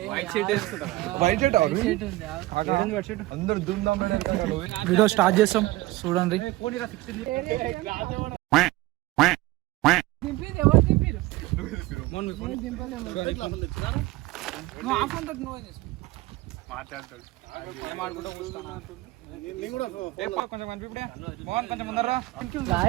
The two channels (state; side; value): quieter; left; 18.8 dB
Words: వీడియో స్టార్ట్ చేస్తాం, చూడండి. కొంచెం ముందరా